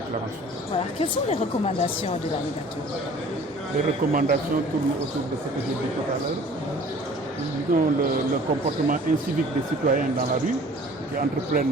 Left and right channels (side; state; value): both; normal; correlation 0.49